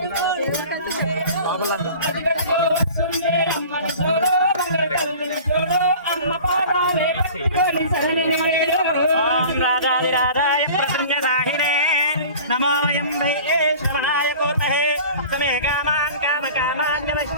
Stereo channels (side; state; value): both; inverted; correlation -0.42